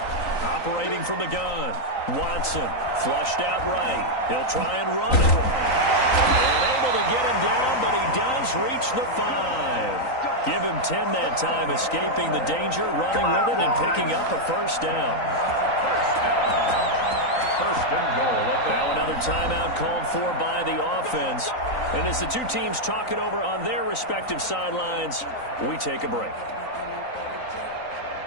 Operating from the gun. Watson flushed out right. He'll try and run it. And able to get him down, but he does reach the 5. Give him 10 that time, escaping the danger, running with it, and picking up a first down. First and goal. Now another timeout called for by the offense. And as the two teams talk it over on their respective sidelines, we take a break.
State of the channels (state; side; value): late; right; 3.9 ms